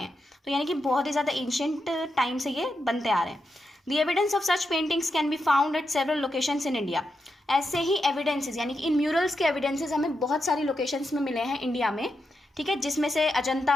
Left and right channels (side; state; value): both; normal; correlation 0.86